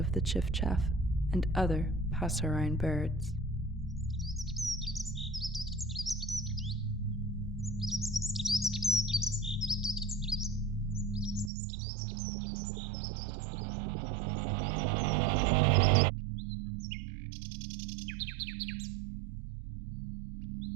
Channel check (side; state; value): left; drops out; at 11.5 s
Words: the chiff-chaff and other passerine birds.